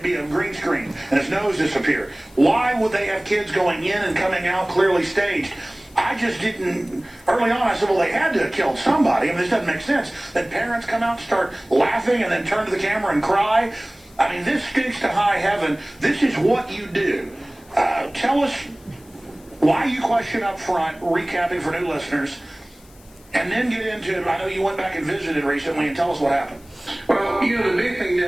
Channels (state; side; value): noise; left; hiss, 27 dB below the sound